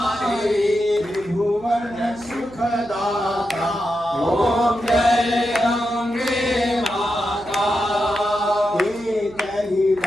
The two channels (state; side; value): noise; right; hum, 21 dB below the sound